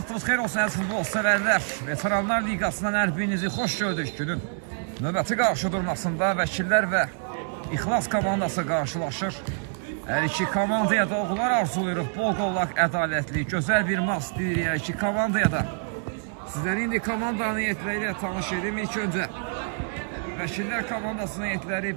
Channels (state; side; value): silent; left; 60 dB below the other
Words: xeyir olsun, əziz futbol sevərlər. Veteranlar Liqasından hər birinizi xoş gördük. Günün növbəti qarşı durmasında vəkillər və İxlas komandası qarşılaşır. Hər iki komandaya da uğurlar arzuluyuruq. Bol qollaq, ədalətli, gözəl bir maç deyirik hər iki komandaya da. Sizləri indi komandanın heyətləri ilə tanış edim. İlk öncə vəkillər komandasının heyətləri